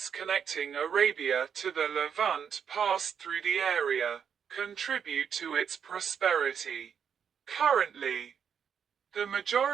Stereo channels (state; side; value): quieter; left; 7.6 dB